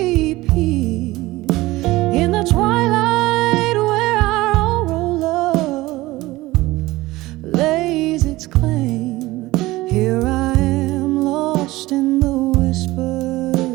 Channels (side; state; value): left; quieter; 18.9 dB